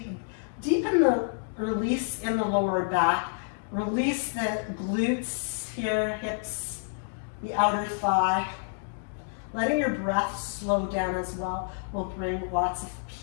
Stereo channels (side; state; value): right; silent; digital silence